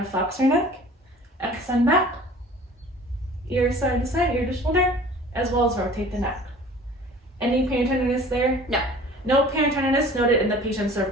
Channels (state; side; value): normal; both; correlation 0.46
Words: to flex our neck, extend back, ear side to side, ear to shoulder, as well as rotate the neck. Any pain or tenderness there? No. No pain or tenderness noted in the patient's